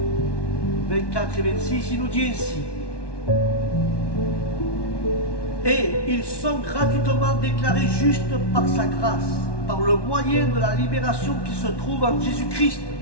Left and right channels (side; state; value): right; late; 1.1 ms